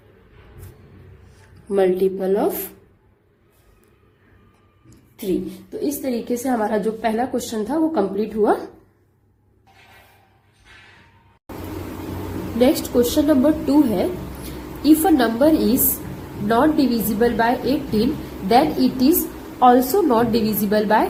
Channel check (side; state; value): both; identical; correlation 1.00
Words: मल्टीपल ऑफ 3। तो इस तरीके से हमारा जो पहला क्वेश्चन था वो कंप्लीट हुआ। नेक्स्ट क्वेश्चन नंबर 2 है, if a number is not divisible by 18 then it is also not divisible